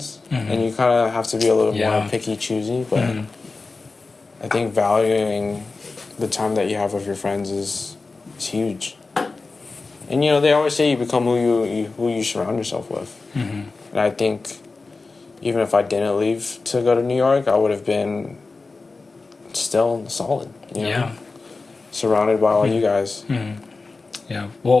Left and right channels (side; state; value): right; quieter; 3.8 dB